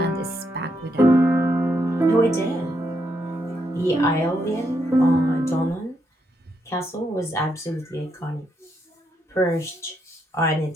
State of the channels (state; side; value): normal; both; correlation 0.79